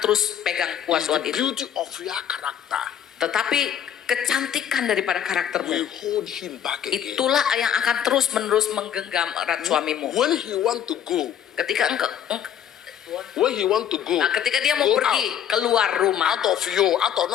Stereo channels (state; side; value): quieter; right; 9.6 dB